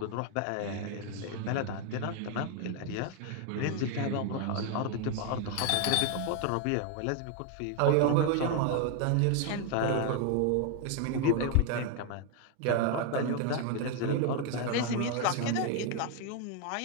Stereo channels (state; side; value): different; both; correlation 0.01